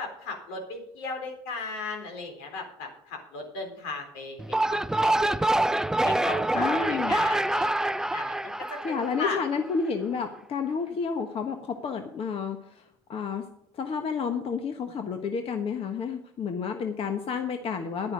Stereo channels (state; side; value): normal; both; correlation 0.71